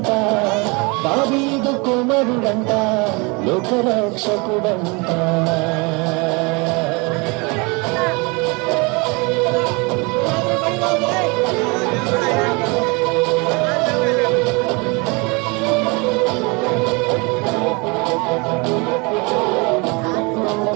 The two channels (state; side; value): quieter; left; 28.9 dB